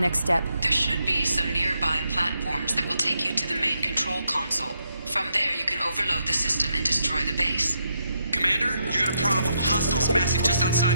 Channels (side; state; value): both; inverted; correlation -0.79